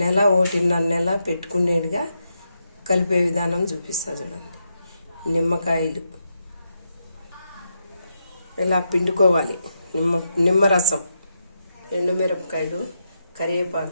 1.5 నెల పెట్టుకునేట్టుగా కలిపే విధానం చూపిస్తా చూడండి. నిమ్మకాయలు ఇలా పిండుకోవాలి. నిమ్మరసం, ఎండుమిరపకాయలు,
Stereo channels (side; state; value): both; inverted; correlation -0.83